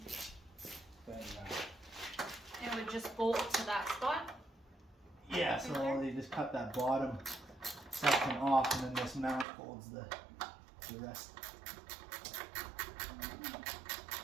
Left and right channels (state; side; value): drops out; left; at 9.5 s